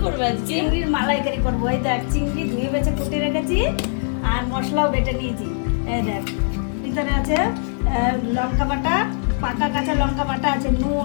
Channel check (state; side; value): silent; right; digital silence